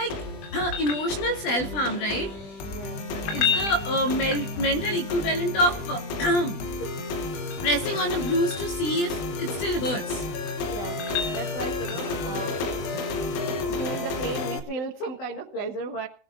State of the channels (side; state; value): right; late; 20 ms